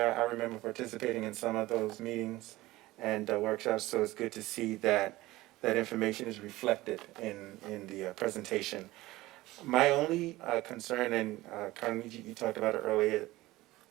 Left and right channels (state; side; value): quieter; left; 18.3 dB